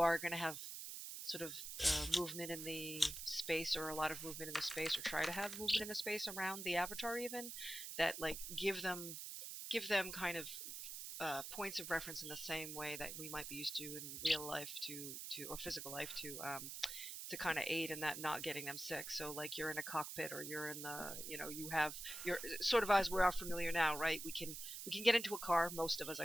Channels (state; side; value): noise; right; hiss, 7 dB below the sound